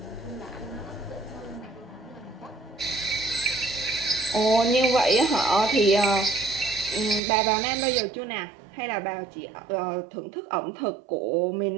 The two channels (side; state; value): left; drops out; at 7.2 s